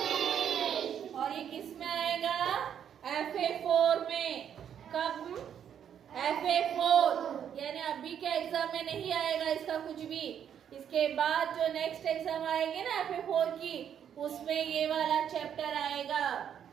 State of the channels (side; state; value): left; quieter; 8.9 dB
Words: और ये किस में आएगा? FA4 में. कब? FA4 यानी अभी के एग्जाम में नहीं आएगा इसका कुछ भी. इसके बाद जो नेक्स्ट एग्जाम आएगी ना FA4 की, उसमें ये वाला चैप्टर आएगा